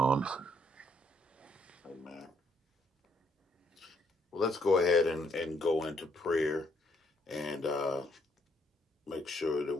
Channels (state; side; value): normal; both; correlation 0.70